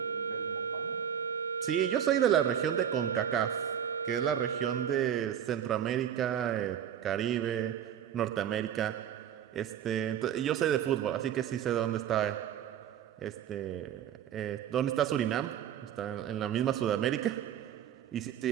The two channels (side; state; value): left; quieter; 9.5 dB